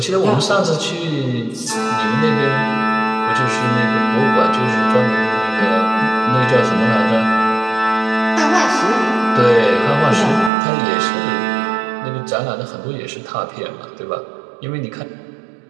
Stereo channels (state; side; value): drops out; left; at 10.5 s